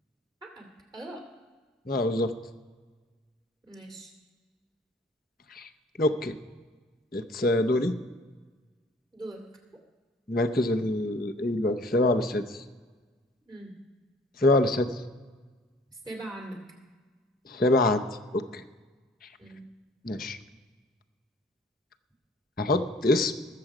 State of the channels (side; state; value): both; normal; correlation 0.53